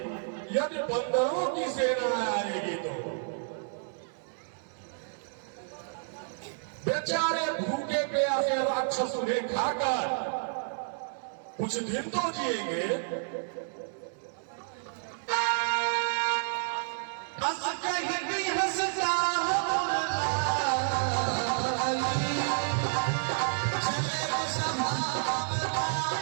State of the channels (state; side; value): silent; left; 58 dB below the other